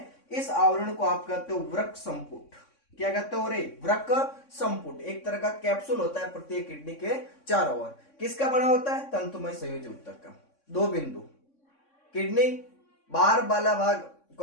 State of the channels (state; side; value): late; right; 3.6 ms